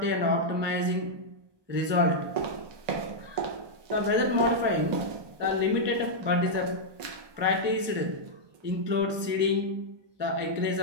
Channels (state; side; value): late; left; 1.2 ms